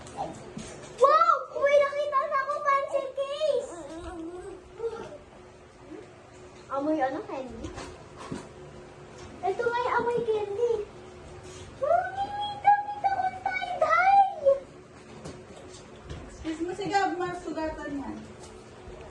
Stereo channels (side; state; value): both; identical; correlation 1.00